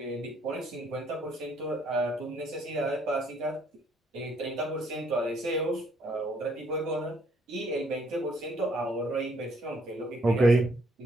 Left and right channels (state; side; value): normal; both; correlation 0.67